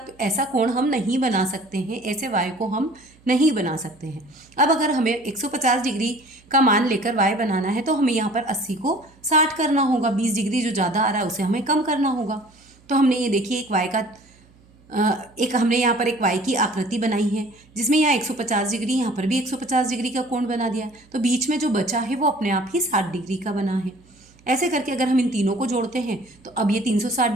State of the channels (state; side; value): noise; right; hum, 29 dB below the sound